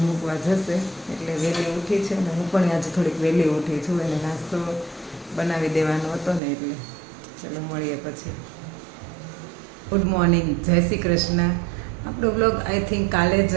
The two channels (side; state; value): left; drops out; at 6.4 s